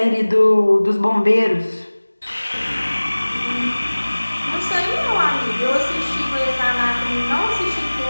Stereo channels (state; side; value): inverted; both; correlation -1.00